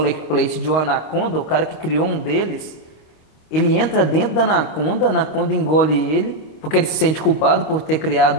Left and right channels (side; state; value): right; late; 25 ms